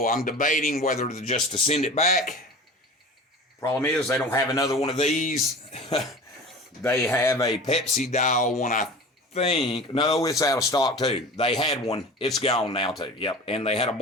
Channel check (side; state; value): both; normal; correlation 0.37